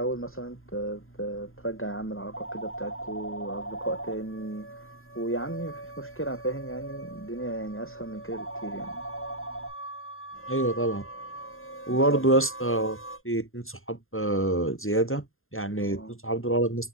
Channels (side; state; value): right; late; 0.61 ms